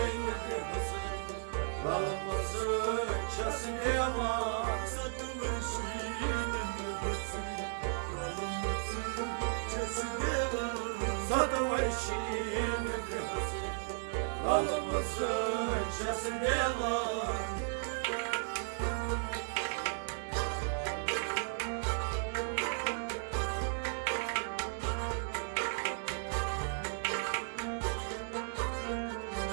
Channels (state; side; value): silent; left; digital silence